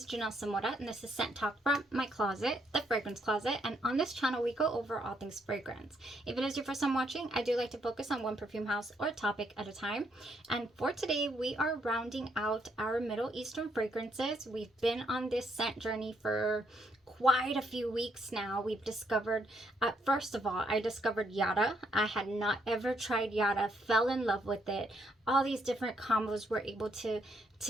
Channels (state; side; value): normal; both; correlation 0.74